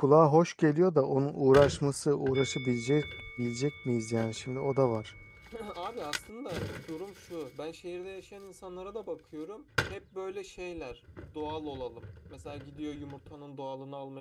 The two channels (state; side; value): identical; both; correlation 1.00